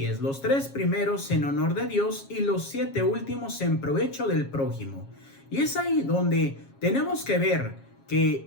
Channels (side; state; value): right; late; 7.3 ms